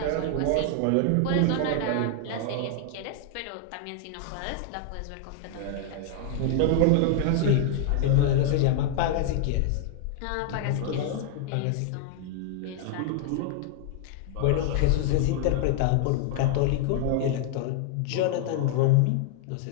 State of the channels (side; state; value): both; different; correlation 0.00